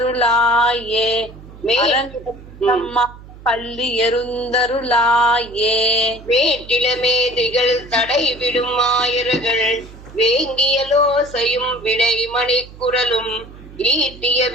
அரங்கத்தம்மா பள்ளி எருந்தருளாயே வேட்டிலமேதிகள் தடைவிடும் ஆயர்கள் வேங்கியலோசையும் விடைமணிக்குரலும் ஈட்டிய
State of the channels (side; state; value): right; noise; hum, 18 dB below the sound